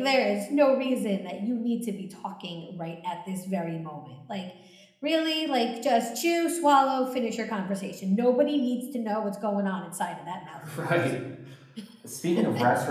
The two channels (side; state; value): both; identical; correlation 1.00